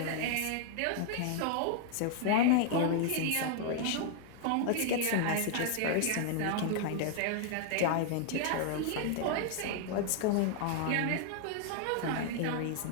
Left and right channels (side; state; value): both; different; correlation 0.00